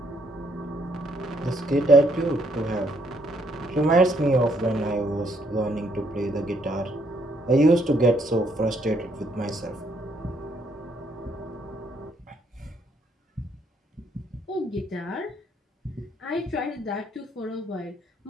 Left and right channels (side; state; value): both; normal; correlation 0.70